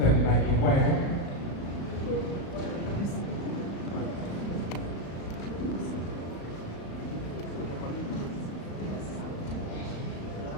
na gịkwa ya.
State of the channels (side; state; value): right; late; 35 ms